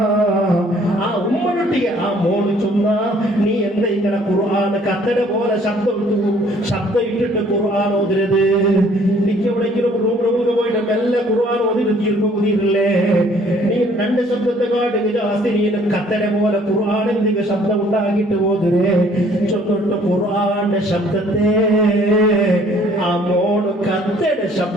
ആ ഉമ്മനൊട്ടിಗೆ ആ മോട് ചൊന്ന നീ എന്താ ഇങ്ങനെ ഖുർആൻ കത്തട പോലെ ശബ്ദം ഇട്ടിട്ട് ഖുർആൻ ഓതിരത്. എനിക്ക് എവിടെയെങ്കിലും റൂമിലൊക്കെ പോയിട്ട് മെല്ലെ ഖുർആൻ ഓതിട്ട് തീർപ്പുതിരില്ലേ. നീ രണ്ട് ശബ്ദത്തെ കാട്ടി ജാസ്തി നീ കത്തട പോലെ ഖുർആൻ എന്തെങ്കിലും ശബ്ദം ഉണ്ടാക്കിയിട്ട് ഓതിരേ. ചൊന്നിട്ട് ഖുർആന്റെ ശബ്ദത്തെ ആ മോട് കത്തട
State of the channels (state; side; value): normal; both; correlation 0.59